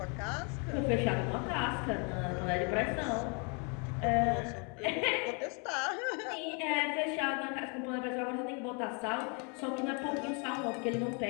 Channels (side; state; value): right; quieter; 35.3 dB